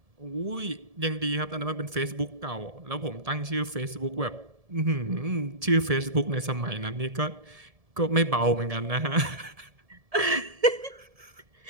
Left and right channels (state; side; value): late; left; 1.7 ms